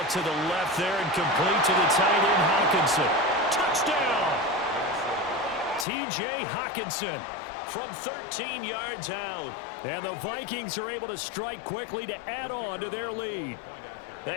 to the left there and complete to the tight end, Hawkinson. Touchdown! T.J. Hawkinson from 13 yards out. And the Vikings are able to strike quickly to add on to their lead.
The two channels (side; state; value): right; drops out; at 5.9 s